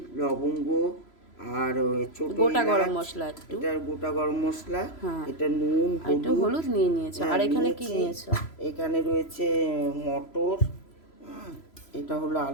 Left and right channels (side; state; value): right; late; 3.0 ms